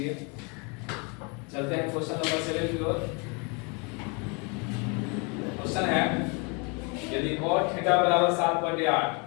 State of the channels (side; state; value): right; quieter; 32.3 dB